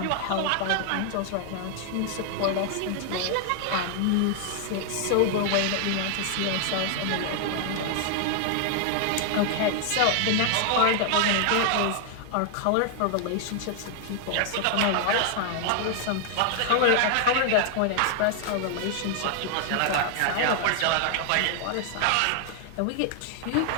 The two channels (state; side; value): different; both; correlation 0.00